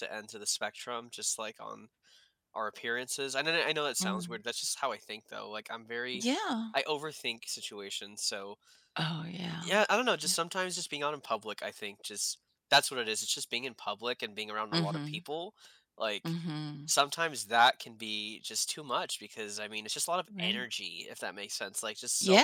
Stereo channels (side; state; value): both; identical; correlation 1.00